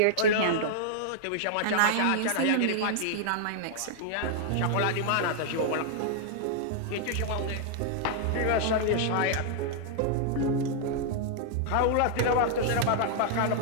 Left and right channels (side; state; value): both; different; correlation 0.00